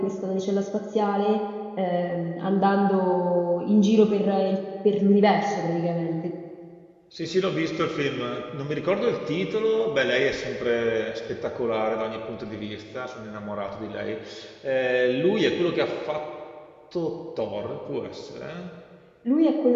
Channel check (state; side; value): identical; both; correlation 1.00